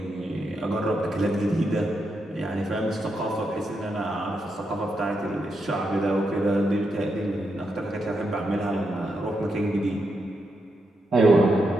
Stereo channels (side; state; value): both; normal; correlation 0.83